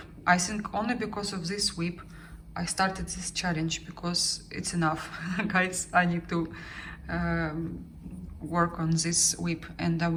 I think only because of this whip I started this challenge, because it's enough. Guys, I need to work on this whip, and I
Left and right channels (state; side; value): identical; both; correlation 1.00